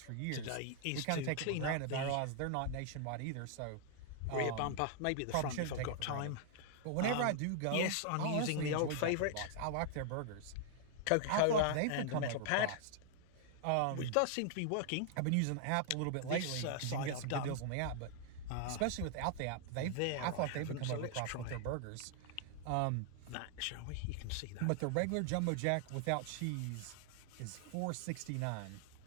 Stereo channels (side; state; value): both; different; correlation 0.00